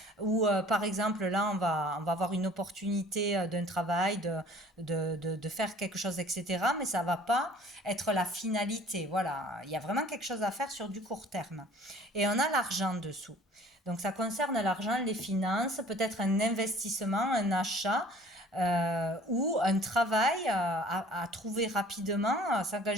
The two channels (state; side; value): normal; both; correlation 0.51